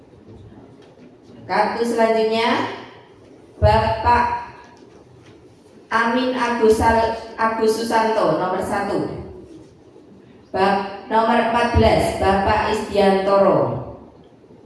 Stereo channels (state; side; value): identical; both; correlation 1.00